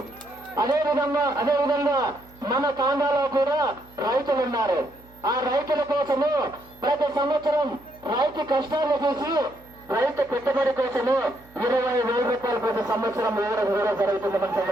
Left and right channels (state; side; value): noise; right; hum, 25 dB below the sound